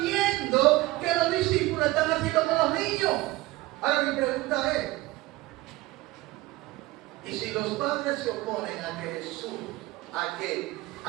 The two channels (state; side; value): quieter; left; 19.2 dB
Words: que los discípulos están haciendo con los niños. Ahora mi pregunta es, y si los padres se oponen a que Jesús, a